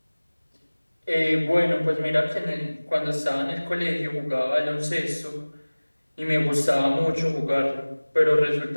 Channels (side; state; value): both; inverted; correlation -1.00